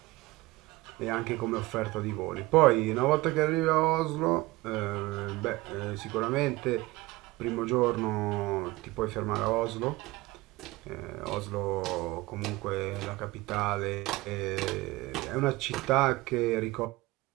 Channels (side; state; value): left; quieter; 20.5 dB